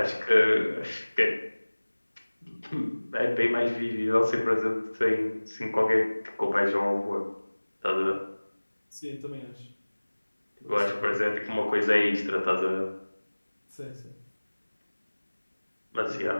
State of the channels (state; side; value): inverted; both; correlation -1.00